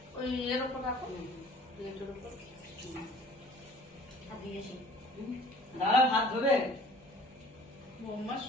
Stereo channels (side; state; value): both; normal; correlation 0.51